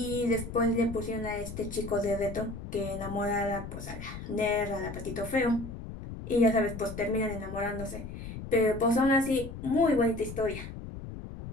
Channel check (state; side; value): noise; left; rumble, 10 dB below the sound